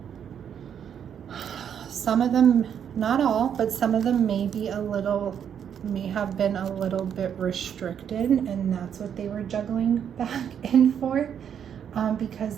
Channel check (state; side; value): quieter; left; 8.5 dB